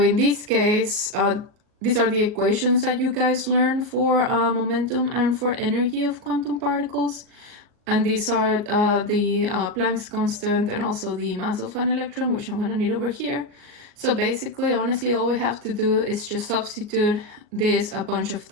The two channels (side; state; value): left; late; 38 ms